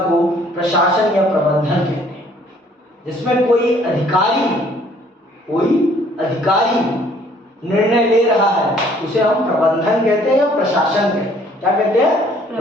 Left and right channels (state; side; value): normal; both; correlation 0.60